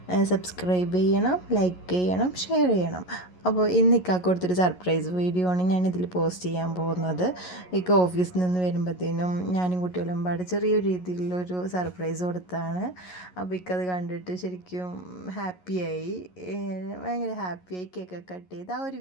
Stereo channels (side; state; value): right; late; 11 ms